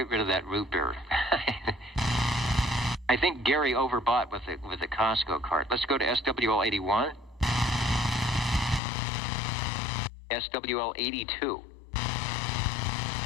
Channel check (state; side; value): drops out; right; at 8.8 s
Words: rid of that root beer. I think Gary overbought with the Costco cart. Let's go to SWL81. SWL82.